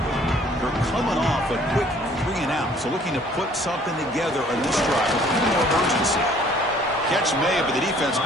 They're coming off a quick 3-and-out, so looking to put something together on this drive with a little more urgency. Catch made, but the defense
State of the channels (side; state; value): both; normal; correlation 0.57